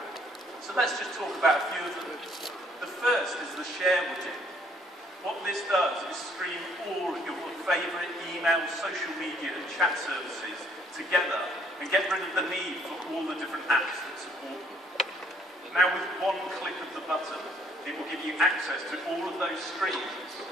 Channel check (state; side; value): normal; both; correlation 0.63